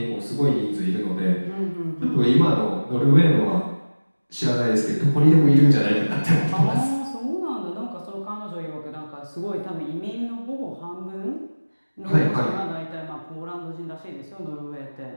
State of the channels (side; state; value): both; inverted; correlation -1.00